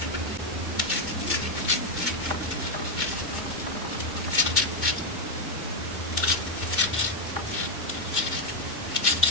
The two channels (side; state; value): both; normal; correlation 0.03